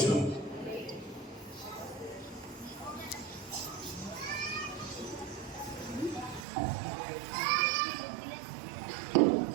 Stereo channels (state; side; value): drops out; left; at 6.5 s